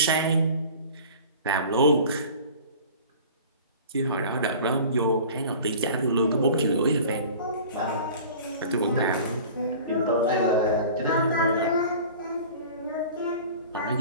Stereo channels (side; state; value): both; inverted; correlation -0.41